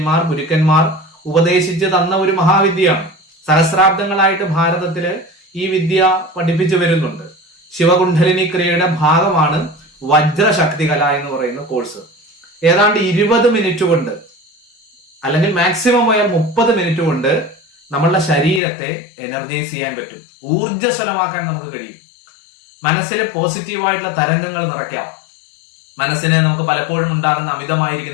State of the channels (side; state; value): right; drops out; at 18.6 s